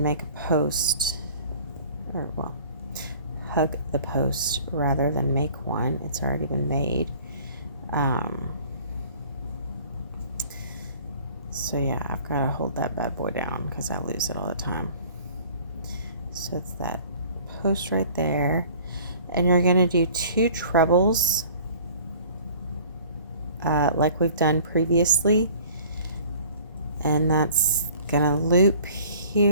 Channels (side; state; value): both; inverted; correlation -0.49